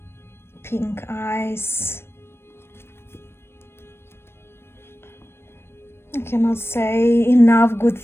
Pink eyes. cannot say enough good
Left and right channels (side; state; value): right; late; 0.12 ms